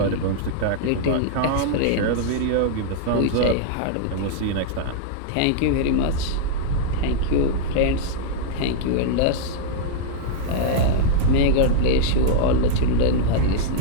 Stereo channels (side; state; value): both; different; correlation -0.01